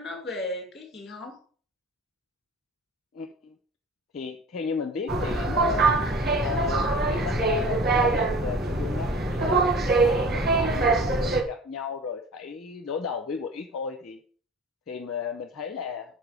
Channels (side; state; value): both; normal; correlation 0.40